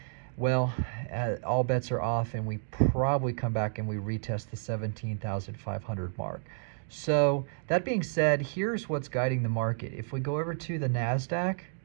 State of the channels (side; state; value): left; silent; digital silence